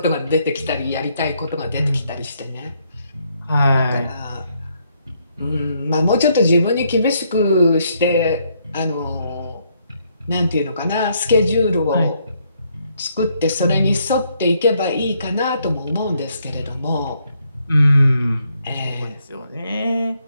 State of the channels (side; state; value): both; inverted; correlation -0.72